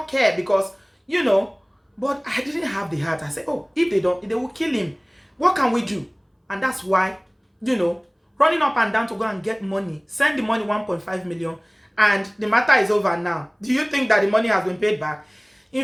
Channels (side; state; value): both; identical; correlation 1.00